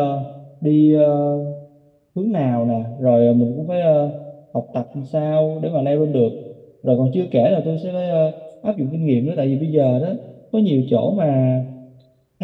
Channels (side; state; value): both; identical; correlation 1.00